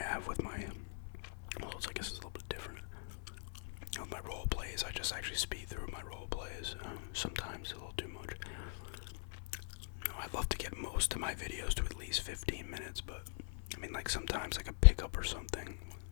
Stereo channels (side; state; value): right; silent; 50 dB below the other